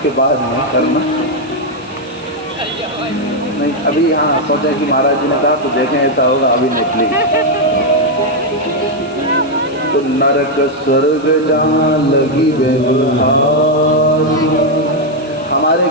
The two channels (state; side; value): noise; right; hiss, 27 dB below the sound